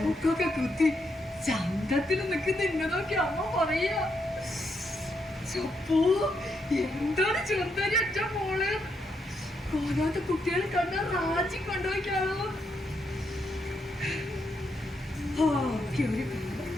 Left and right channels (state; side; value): normal; both; correlation 0.79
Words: മൂക്കൊക്കെ കുത്തി ചന്തത്തിൽ നിൽക്കുന്ന എന്നെ നോക്കി അമ്മ പറയാ, ചപ്പോ എന്താണ് ചെറുതാരി ഒറ്റ മോള് കോലാത്ത കുട്ടികളെ കണ്ട റാജി കൊണ്ടുപോയിക്കാണോ.